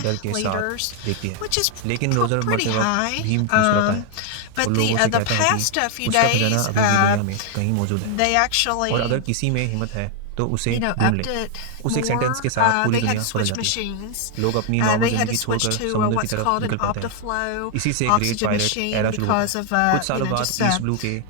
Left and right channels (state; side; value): different; both; correlation 0.00